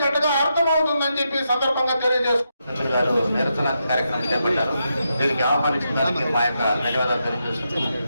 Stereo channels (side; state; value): both; inverted; correlation -0.84